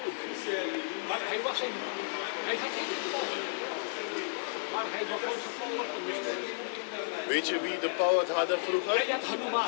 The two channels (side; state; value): right; silent; digital silence